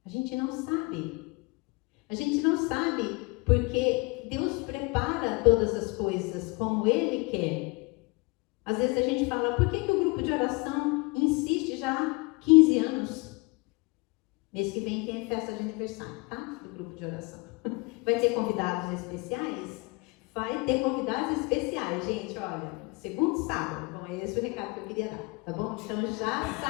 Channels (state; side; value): quieter; right; 27.7 dB